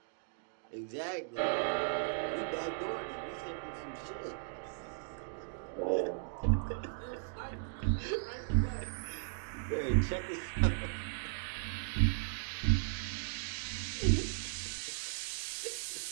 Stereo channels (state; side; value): silent; left; digital silence